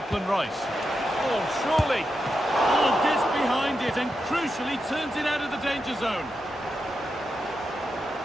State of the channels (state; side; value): normal; both; correlation 0.87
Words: Rice. Oh, surely. Oh, gets behind it and crucially turns it out of the danger zone.